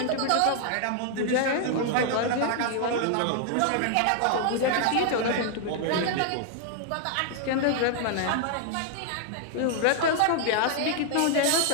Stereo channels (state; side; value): different; both; correlation 0.00